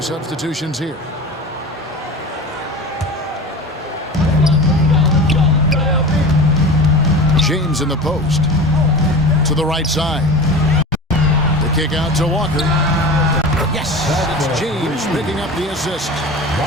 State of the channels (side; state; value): both; normal; correlation 0.33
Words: substitutions here. James in the post. To the right side. The kick out to Walker. Yes, it's James picking up the assist.